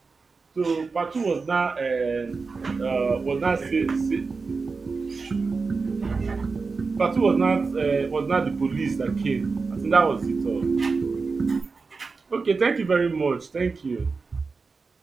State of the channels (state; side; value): quieter; left; 4.4 dB